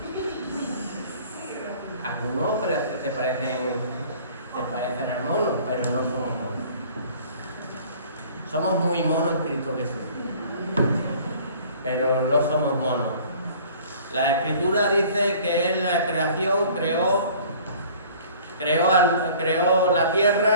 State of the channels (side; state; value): both; inverted; correlation -0.50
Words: Algunos se parecen al mono, pero no somos monos. Somos muy monos en Cristo Jesús, pero no somos monos. La Escritura dice que Él, la creación, creó creó la